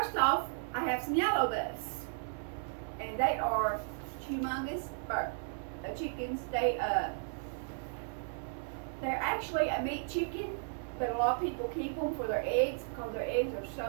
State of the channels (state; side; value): silent; left; digital silence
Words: off, I have some yellow buffs, and they are humongous chickens. They're actually a meat chicken, but a lot of people keep them for their eggs because their eggs are